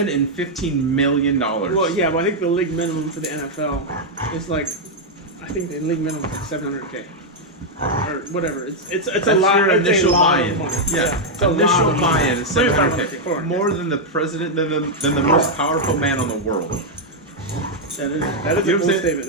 and $15 million. Well, yeah, but I think the league minimum for the NFL is like, I think the league minimum is $700K. Or whatever. It's a lot. Your initial buy-in. Yeah. Initial buy-in is $700K. More than the president, than the most powerful man on the world. That is a bold statement.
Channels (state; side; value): normal; both; correlation -0.02